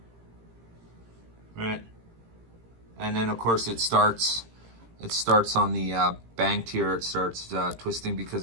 Right. And then of course it starts on the banked here. It starts twisting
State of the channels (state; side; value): late; left; 18 ms